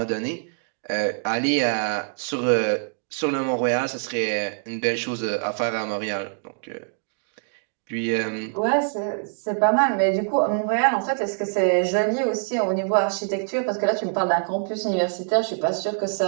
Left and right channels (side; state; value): left; silent; digital silence